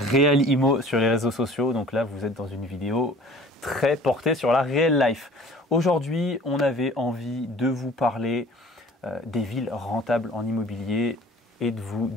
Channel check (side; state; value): both; normal; correlation 0.48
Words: sur les réseaux sociaux. Donc là, vous êtes dans une vidéo très portée sur la real life. Aujourd'hui, on avait envie de vous parler des villes rentables en immobilier et de vous